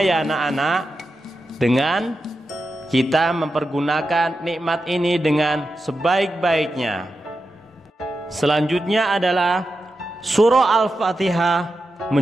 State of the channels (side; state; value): both; normal; correlation 0.90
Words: ya anak-anak, dengan kita mempergunakan nikmat ini dengan sebaik-baiknya. Selanjutnya adalah surah Al-Fatihah